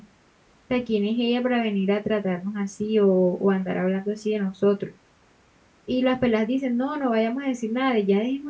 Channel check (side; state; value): both; identical; correlation 1.00